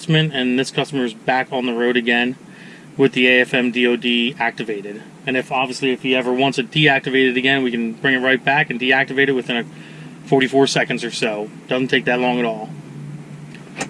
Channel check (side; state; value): both; identical; correlation 1.00